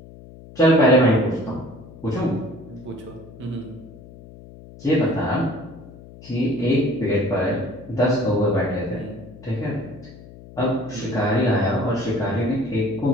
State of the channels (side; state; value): left; noise; hum, 18 dB below the sound